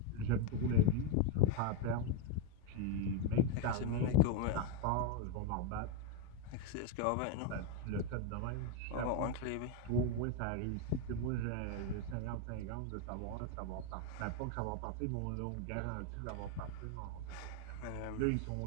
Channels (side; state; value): both; different; correlation 0.02